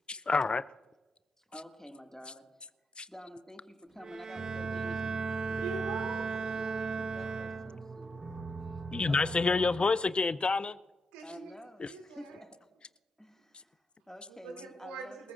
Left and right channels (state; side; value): normal; both; correlation 0.82